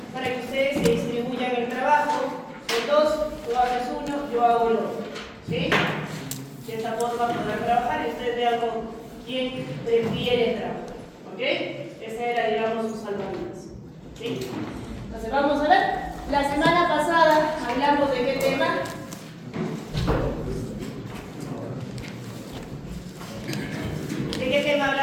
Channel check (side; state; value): both; identical; correlation 1.00